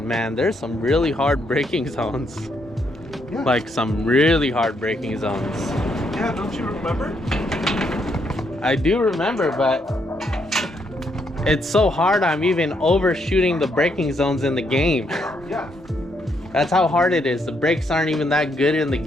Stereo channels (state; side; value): normal; both; correlation 0.75